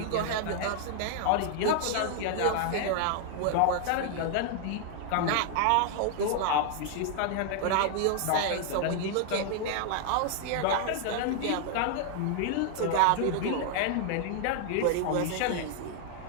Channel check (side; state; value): both; different; correlation 0.00